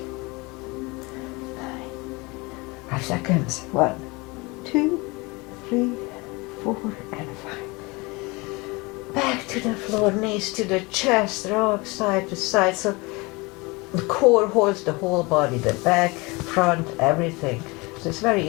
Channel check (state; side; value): quieter; right; 25.4 dB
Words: 9. 5 seconds. 1, 2, 3, 4, and 5. Back to the floor, knees to the chest, rock side to side. So the core holds the whole body, the back, front, everything. So it's very